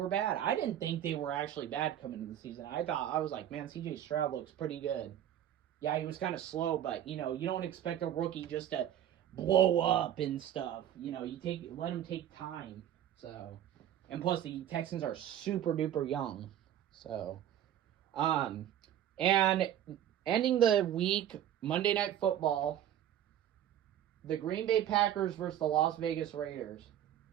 bad. I didn't think they were actually bad coming into the season. I was like, man, CJ Stroud looks pretty good. Yeah, he was kind of slow, but, you don't expect a rookie just to blow up and stuff. Let him take time. So, and plus the Texans are super duper young. So, and ending the week, Monday Night Football, the Green Bay Packers versus the Las Vegas Raiders.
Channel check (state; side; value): quieter; left; 11.0 dB